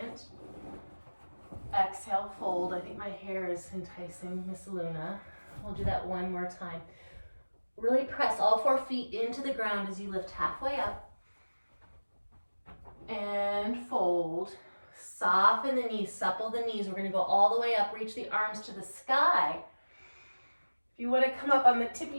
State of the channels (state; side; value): inverted; both; correlation -1.00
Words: Exhale, fold. I think my hair is enticing Miss Luna. We'll do that one more time. Really press all 4 feet into the ground as you lift halfway up. And fold. Soften the knees, supple the knees. We're going to go all the way up, reach the arms to the sky. If you want to come up on the